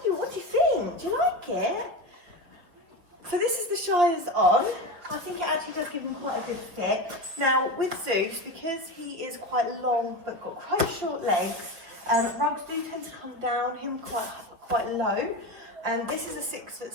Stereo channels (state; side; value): late; left; 5.5 ms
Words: What do you think? Do you like it? So this is the Shire's on. I think it actually does give him quite a good fit. Now with Zeus, because he is quite long but got quite short legs, rugs do tend to come down him quite low. And this is a